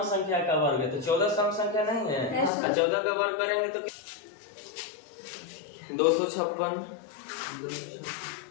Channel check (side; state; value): right; drops out; at 2.5 s